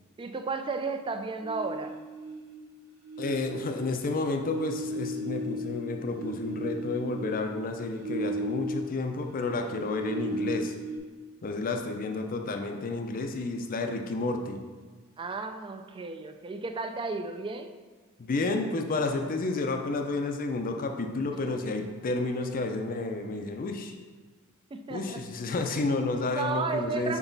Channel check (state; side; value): normal; both; correlation 0.37